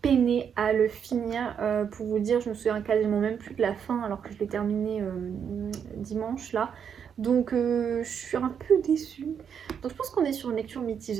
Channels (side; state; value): left; quieter; 7.6 dB